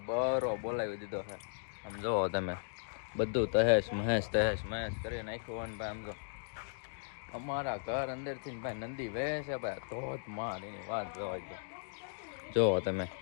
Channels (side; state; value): right; silent; digital silence